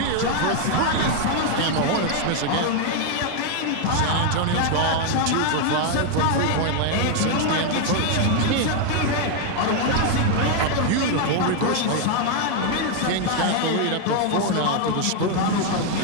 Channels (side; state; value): both; different; correlation 0.01